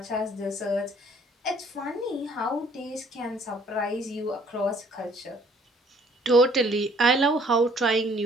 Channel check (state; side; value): normal; both; correlation 0.59